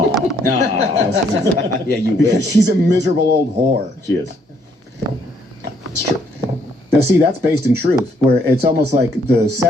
No. Yeah, you Because wish. she's a miserable old whore. She is. It's true. Now, see, that's based in truth, where it's almost like the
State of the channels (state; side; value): normal; both; correlation 0.69